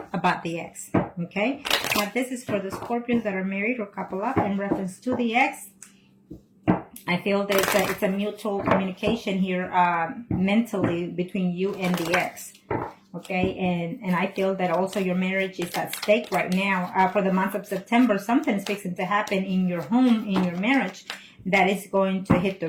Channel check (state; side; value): identical; both; correlation 1.00